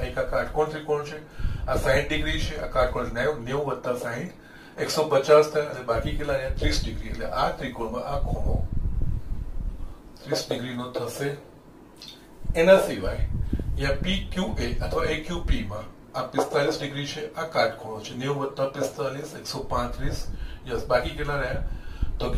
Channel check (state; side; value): identical; both; correlation 1.00